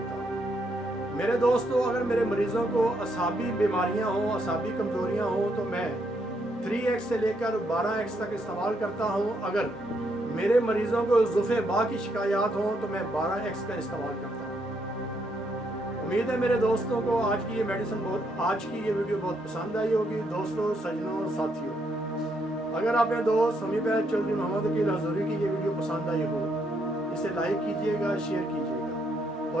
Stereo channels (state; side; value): normal; both; correlation 0.75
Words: हूँ। मेरे दोस्तों, अगर मेरे मरीज़ों को असाबी बीमारियाँ हों, असाबी कमज़ोरियाँ हों तो मैं 3x से लेकर 12x तक इस्तेमाल करता हूँ। अगर मेरे मरीज़ों को ज़ुफ़े बा की शिकायत हों तो मैं 12x का इस्तेमाल करता हूँ। उम्मीद है मेरे दोस्तों को आज की ये वीडियो बहुत पसंद आई होगी। दोस्तों, सजनों, साथियों, अगर आपने दोस्त हमीद चौधरी मोहम्मद वकील हजूरी की ये वीडियो पसंद आई हो, इसे लाइक कीजिएगा, शेयर कीजिएगा